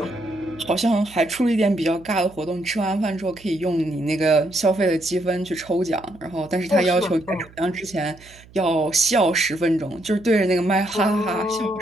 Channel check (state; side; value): noise; right; hum, 24 dB below the sound